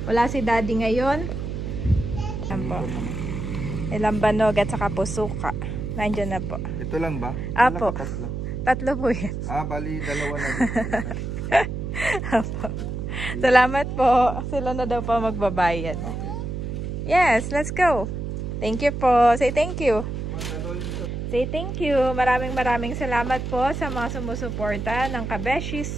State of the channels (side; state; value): right; noise; hum, 4 dB below the sound